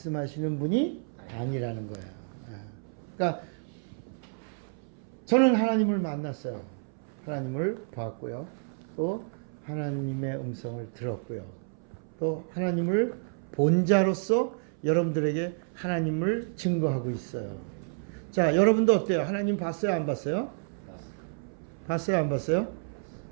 분이 아니라는 거예요. 그러니까 저는 하나님을 만났어요. 하나님을 보았고요. 또 하나님의 음성을 들었고요. 또 하나님을 본 자로서 여러분들에게 하나님을 증거하고 있어요. 자, 여러분도 어때요? 하나님 봤어요? 안 봤어요? 봤어요? 안 봤어요?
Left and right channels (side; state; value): left; silent; 58 dB below the other